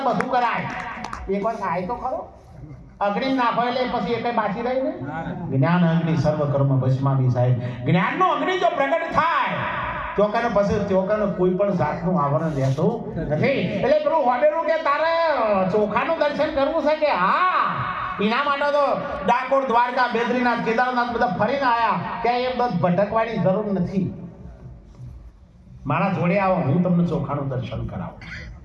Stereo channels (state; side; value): identical; both; correlation 1.00